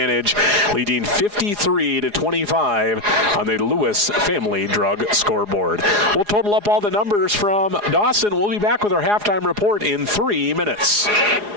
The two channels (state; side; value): late; left; 4.8 ms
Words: leading 53-25 on the Lewis Family Drug scoreboard. We'll total up all the numbers from Dawson. We'll be back with our halftime report in 3 minutes.